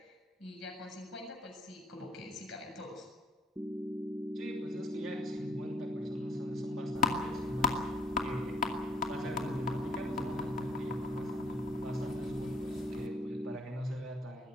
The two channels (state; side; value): normal; both; correlation 0.62